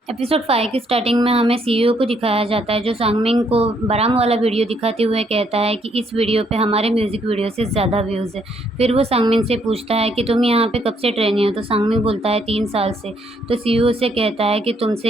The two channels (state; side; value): normal; both; correlation 0.71